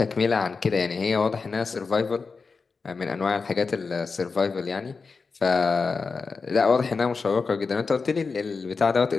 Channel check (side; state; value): right; quieter; 4.7 dB